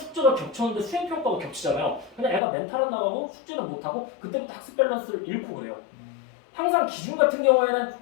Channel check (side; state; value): right; drops out; at 2.4 s